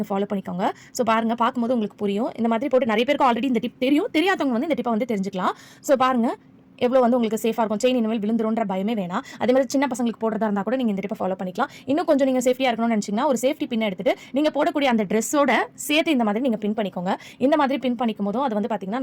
ஃபாலோ பண்ணிக்கோங்க. ஸோ பாருங்க, பார்க்கும்போது உங்களுக்கு புரியும். இந்த மாதிரி போட்டு நிறைய பேருக்கு ஆல்ரெடி இந்த டிப் தெரியும், தெரியாதவங்க வந்து இந்த டிப்பை வந்து தெரிஞ்சுக்கலாம். ஸோ பாருங்க எவ்வளோ வந்து உங்களுக்கு சேஃபாக இருக்கும். செயின் இனிமேல் விழுந்துருன்ற பயமே வேணாம். அதே மாதிரி சின்ன பசங்களுக்கு போடுறதா இருந்தால் கூட நீங்கள் இந்த டிப்பை ஃபாலோ பண்ணிக்கலாம். இன்னும் கொஞ்சம் நீங்கள் சேஃப்டியாக இருக்கணும்னு நினச்சிங்கன்னா ஒரு சேஃப்டி பின் எடுத்துட்டு நீங்கள் போடக்கூடிய அந்த ட்ரெஸ்ஸோட சேர்த்து இந்த மாதிரி நீங்கள் பின் பண்ணிக்கோங்க. இந்த மாதிரி பின் பண்ணிக்கும் போதும் அது வந்து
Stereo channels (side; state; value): both; identical; correlation 1.00